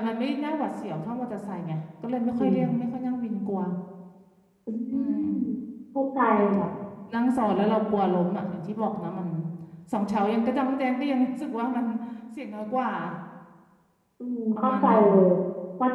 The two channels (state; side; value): identical; both; correlation 1.00